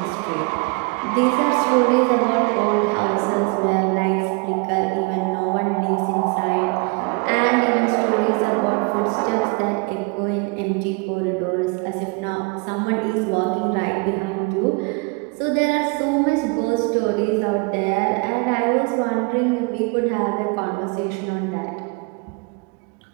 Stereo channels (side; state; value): left; quieter; 29.4 dB